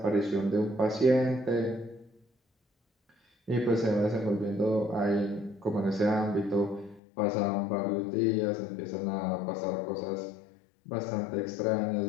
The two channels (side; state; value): right; drops out; at 7.0 s